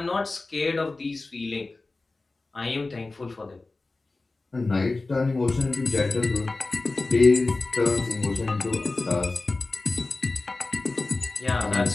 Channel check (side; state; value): right; quieter; 3.4 dB